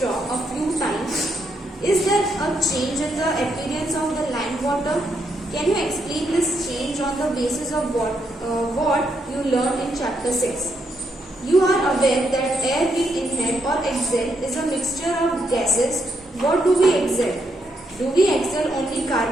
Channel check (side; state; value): both; normal; correlation 0.78